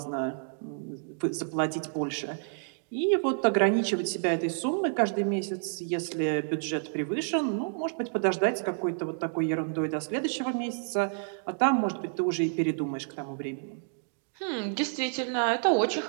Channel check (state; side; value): silent; left; digital silence